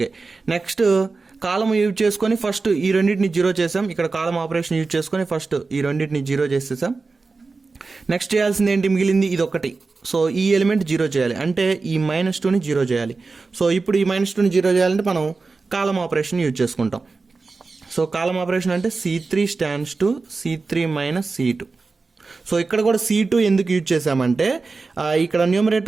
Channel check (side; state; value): left; quieter; 4.0 dB